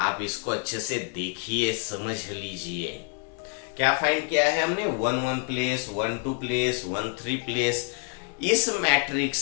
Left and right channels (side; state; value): right; quieter; 39.1 dB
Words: इसको अच्छे से देखिए, समझ लीजिए। क्या फाइंड किया है हमने? 1 प्लेस, 1 प्लेस, 3 प्लेस। इस